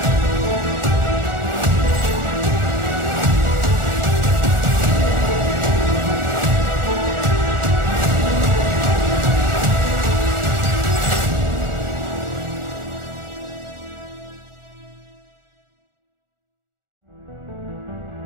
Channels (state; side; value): late; left; 1.4 ms